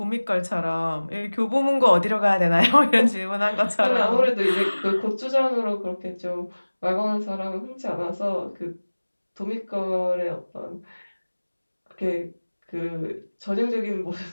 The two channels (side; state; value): both; inverted; correlation -1.00